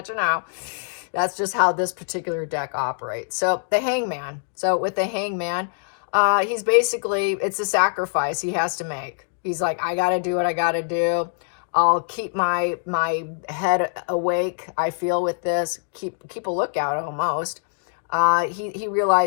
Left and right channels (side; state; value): right; silent; digital silence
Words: you know, that's just how this particular deck operates. So the Hangman. So with the Hangman, he's basically, it's a sacrifice he has to make. He's like, I got to do what I got to do. I'll keep my head awake, I feel, with this. Keep a lookout almost. He